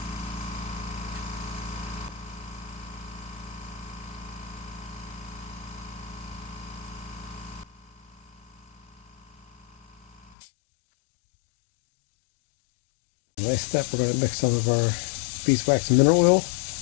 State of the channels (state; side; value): drops out; right; at 10.4 s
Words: Next step, we're going to mix some of our beeswax and mineral oil